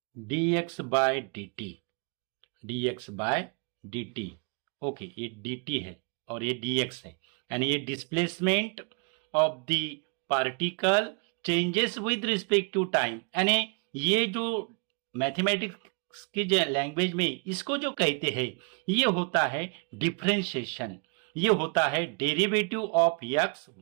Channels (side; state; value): left; quieter; 36.2 dB